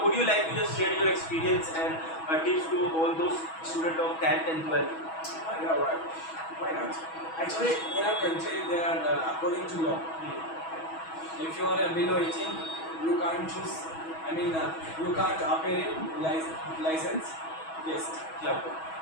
would you like to just share your experience and tips to all those students of 10th and 12th? Yeah, right. Why not? Actually, in our country, they are according to law. If you are below 18, you can't choose. I mean, you can't appear in license. Yes. Yeah.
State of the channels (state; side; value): late; right; 6.2 ms